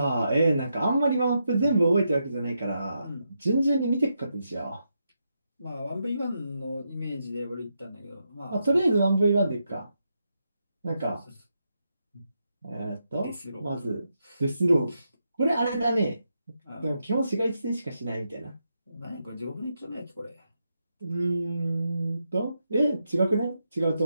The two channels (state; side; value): inverted; both; correlation -0.83